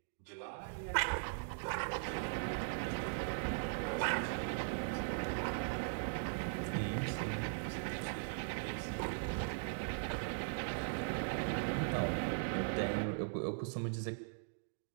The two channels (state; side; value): silent; left; digital silence